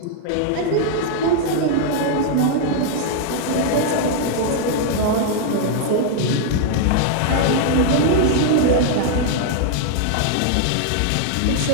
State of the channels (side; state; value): both; different; correlation 0.00